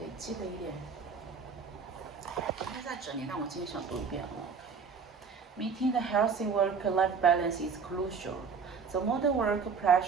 记得一点。昨天在整理，但我今天想读一遍。Meeting the healthy work-life balance is crucial. The modern work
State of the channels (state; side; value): quieter; left; 5.6 dB